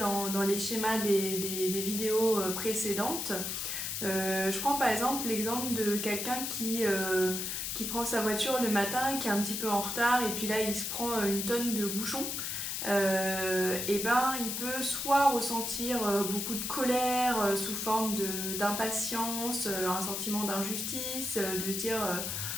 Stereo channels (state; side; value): noise; left; hiss, 3 dB below the sound